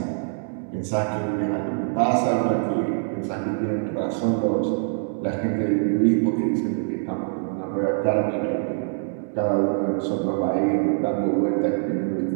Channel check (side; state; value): left; silent; digital silence